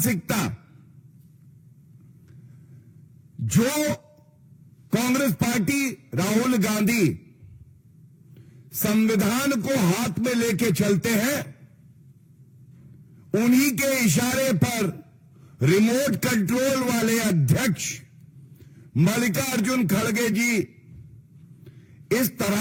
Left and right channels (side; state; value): both; identical; correlation 1.00